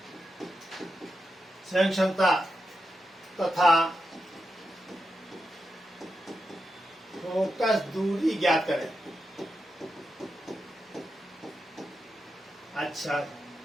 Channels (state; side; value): normal; both; correlation 0.87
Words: संयुक्त क्षमता तथा फोकस दूरी ज्ञात करें। अच्छा,